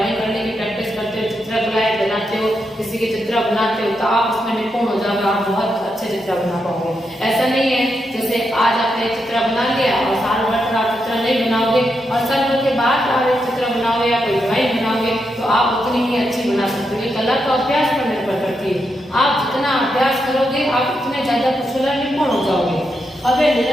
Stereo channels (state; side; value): normal; both; correlation 0.83